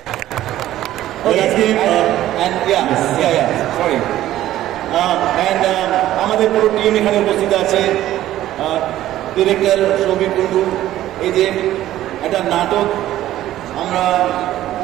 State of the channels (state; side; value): quieter; left; 13.7 dB